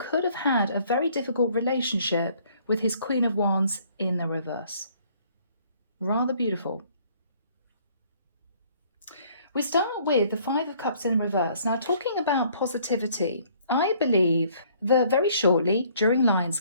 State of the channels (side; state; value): both; inverted; correlation -0.60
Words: have had a very difficult relationship with his Queen of Wands in the reverse. Rather beautiful. We start with the 5 of Cups in reverse. Now, talking about positivity, I believe that very shortly during